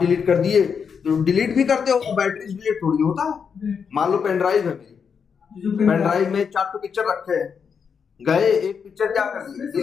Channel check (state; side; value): quieter; right; 6.5 dB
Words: कर दिए तो डिलीट भी करते हो, बैटरी डिलीट थोड़ी होता है, मान लो पेन ड्राइव है मेरी, पेन ड्राइव में 4 पिक्चर रखे हैं, गए एक पिक्चर क्या कर दिया